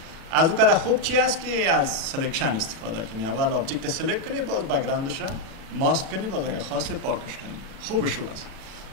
از اون کده خوب چی است که از سلکشن استفاده کنی. اول ابجکت سلکت کنی، باز بک‌گراندش را ماسک کنی، باز اگه خواسته پاکش کنی. خوبش است.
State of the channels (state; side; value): late; left; 37 ms